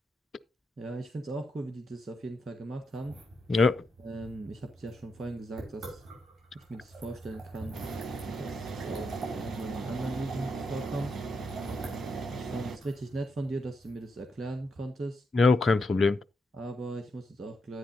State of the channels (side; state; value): both; normal; correlation 0.83